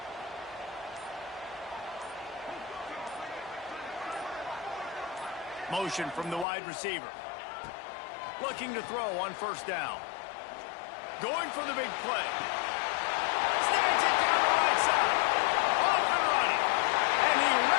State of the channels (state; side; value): drops out; right; at 6.5 s